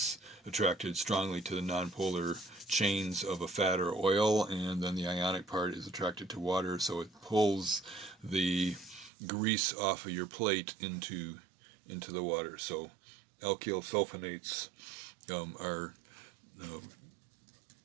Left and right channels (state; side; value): drops out; left; at 9.1 s